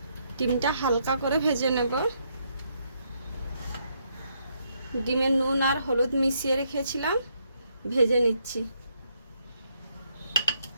ডিমটা হালকা করে ভেজে নেব। ডিমে নুন আর হলুদ মিশিয়ে রেখেছিলাম, ভেজে নিচ্ছি।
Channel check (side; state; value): both; inverted; correlation -0.75